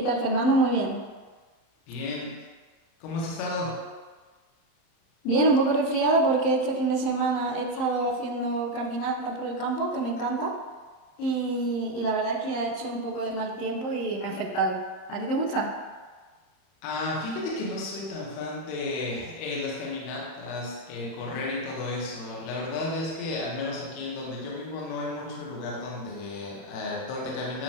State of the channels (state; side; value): late; right; 31 ms